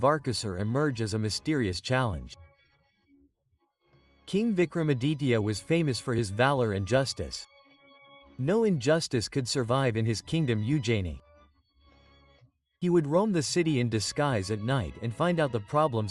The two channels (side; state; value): both; identical; correlation 1.00